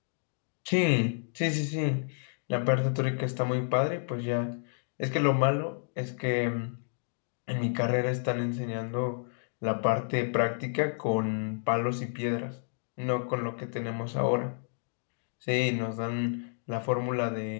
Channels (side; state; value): right; silent; digital silence